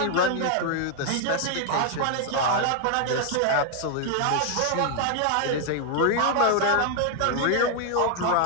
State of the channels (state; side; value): different; both; correlation 0.00